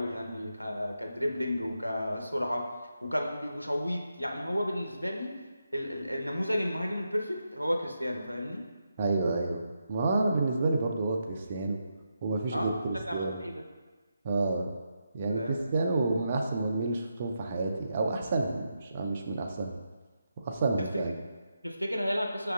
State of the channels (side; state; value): both; inverted; correlation -0.85